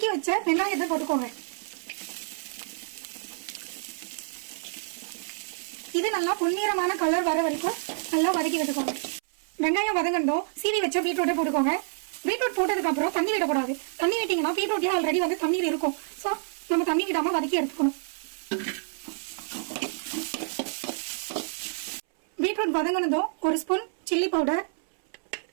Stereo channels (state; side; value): silent; left; 59 dB below the other